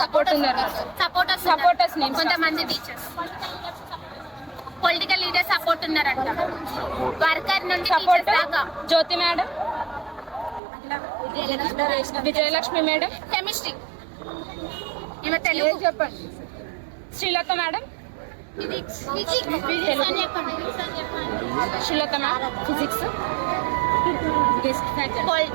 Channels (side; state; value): left; drops out; at 10.6 s